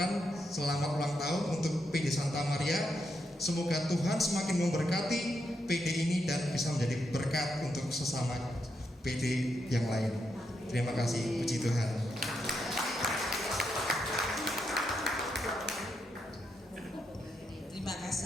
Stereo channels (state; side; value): normal; both; correlation 0.82